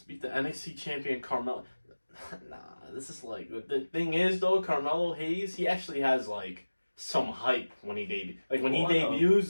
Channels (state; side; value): inverted; both; correlation -1.00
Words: beat the NXT champion Carmelo. Nah, this is like, the thing is though, Carmelo Hayes, he actually has like some hype when he debuts. Like when he debuts,